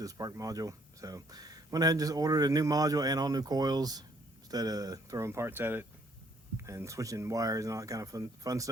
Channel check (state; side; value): normal; both; correlation 0.65